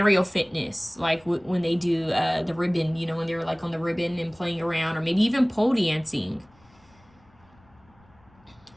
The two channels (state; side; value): noise; left; rumble, 30 dB below the sound